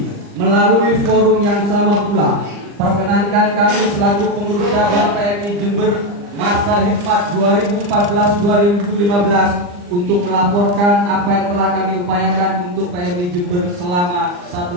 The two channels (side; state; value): left; late; 39 ms